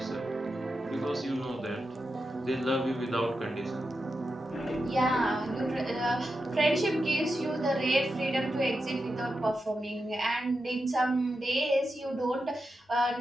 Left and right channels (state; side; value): normal; both; correlation 0.89